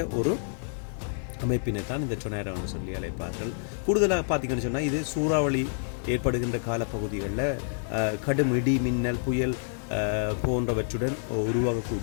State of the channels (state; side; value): silent; right; digital silence